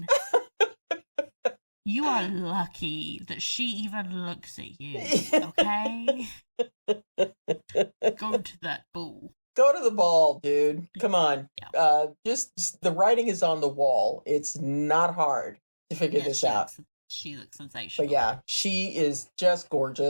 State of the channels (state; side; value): inverted; both; correlation -1.00